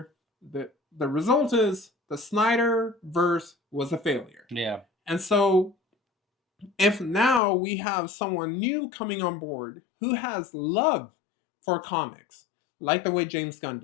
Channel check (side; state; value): right; drops out; at 7.4 s